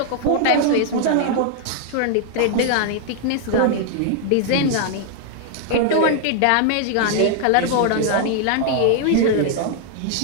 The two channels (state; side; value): different; both; correlation 0.00